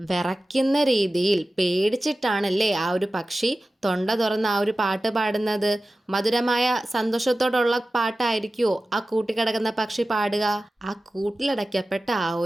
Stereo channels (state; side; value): normal; both; correlation 0.95